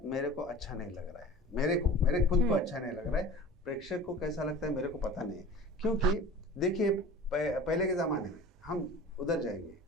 मेरे को अच्छा नहीं लग रहा है, मेरे खुद को अच्छा नहीं लग रहा है। प्रेक्षक को कैसा लगता है मेरे को पता नहीं है, क्योंकि देखिए पहले के ज़माने में हम उधर जाएंगे,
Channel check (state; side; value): normal; both; correlation 0.39